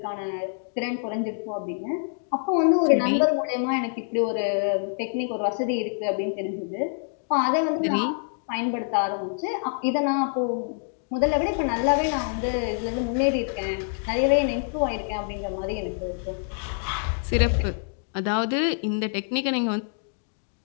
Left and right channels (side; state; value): right; silent; 61 dB below the other